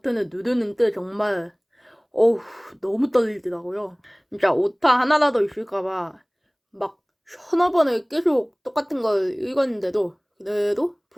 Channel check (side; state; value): both; identical; correlation 1.00